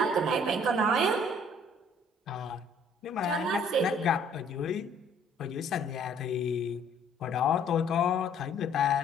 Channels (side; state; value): both; normal; correlation 0.59